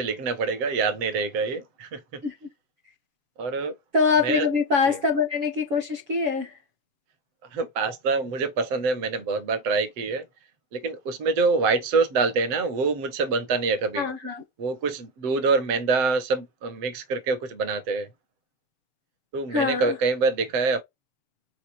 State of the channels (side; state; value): left; late; 7.1 ms